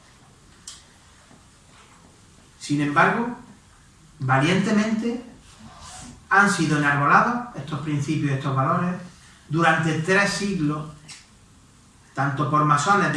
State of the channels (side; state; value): both; identical; correlation 1.00